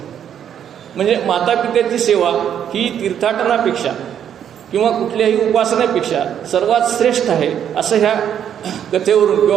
म्हणजे मातापित्याची सेवा ही तीर्थाटनापेक्षा किंवा कुठल्याही उपासनेपेक्षा सर्वात श्रेष्ठ आहे असं ह्या कथेवरून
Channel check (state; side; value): quieter; left; 9.3 dB